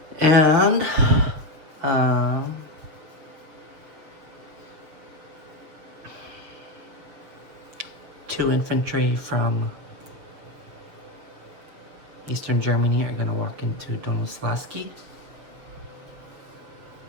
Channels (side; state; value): left; late; 7.0 ms